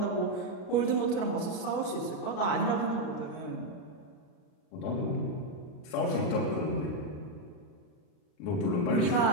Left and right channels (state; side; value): late; right; 39 ms